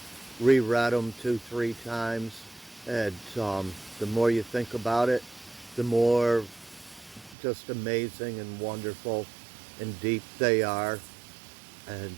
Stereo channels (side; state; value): left; drops out; at 7.4 s